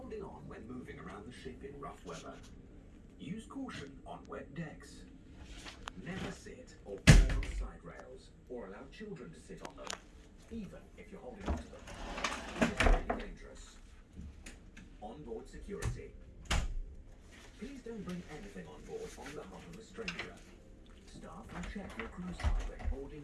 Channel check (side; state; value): both; identical; correlation 1.00